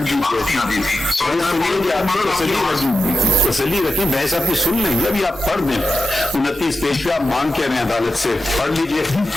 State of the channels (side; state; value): both; normal; correlation 0.89